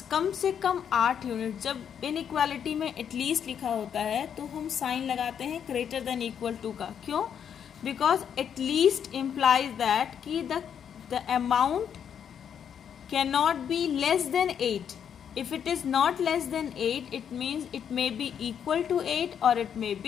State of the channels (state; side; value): quieter; right; 8.3 dB